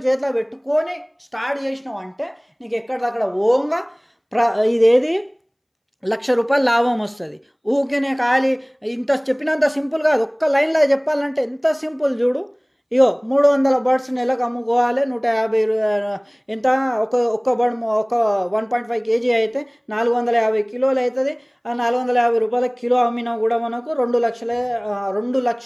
చేతిలో పెట్టుకొని స్టార్ట్ చేసినావు అంటే నీకు ఎక్కడిదక్కడ ఓంగా ఇదేది 1,00,000 రూపాయలు లాభం వస్తుంది. ఊకేనే ఖాళీ ఇంత చెప్పినంత సింపుల్ కాదు. ఒక్క లైన్లో చెప్పాలంటే ఎంత సింపుల్ చూడు. ఇగో 300 బర్డ్స్ నెలకు అమ్ముకోవాలి, 150 ఎంత ఒక్క బర్డ్ ఒక 1.5 kg అయితే 450 కిలోలు అవుతుంది. ఆ 450 రూపాయల కిలో అమ్మినా కూడా మనకు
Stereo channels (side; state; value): both; identical; correlation 1.00